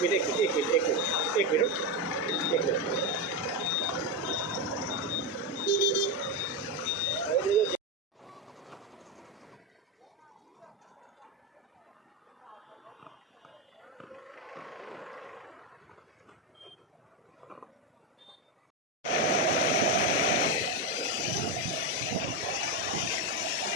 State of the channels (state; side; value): normal; both; correlation 0.11